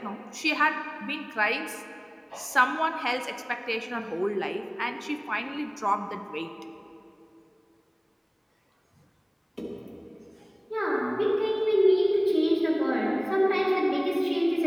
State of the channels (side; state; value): both; identical; correlation 1.00